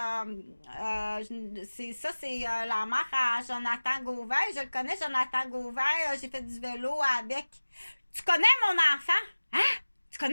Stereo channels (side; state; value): both; inverted; correlation -1.00